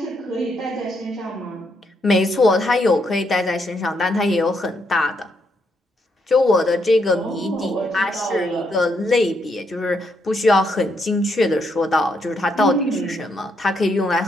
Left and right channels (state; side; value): normal; both; correlation 0.77